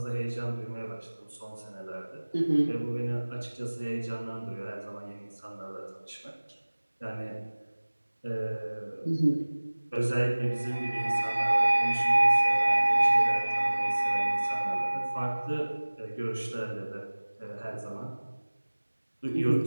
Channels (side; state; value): both; inverted; correlation -1.00